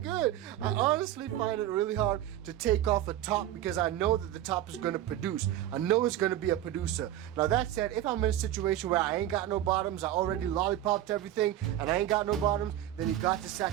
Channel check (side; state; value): left; quieter; 12.6 dB